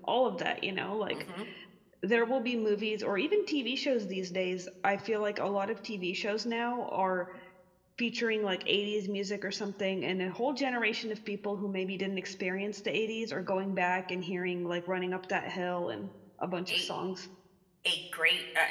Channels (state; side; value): identical; both; correlation 1.00